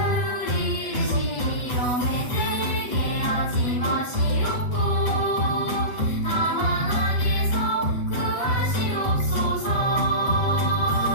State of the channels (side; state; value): right; late; 7.8 ms